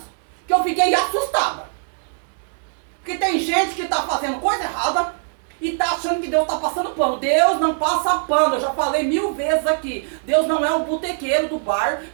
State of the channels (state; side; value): silent; left; digital silence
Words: que eu fiquei assustada. Porque tem gente que está fazendo coisa errada e está achando que Deus está passando pano. Deus não passa pano. Eu já falei 1000 vezes aqui. Deus não é um botequeiro do bar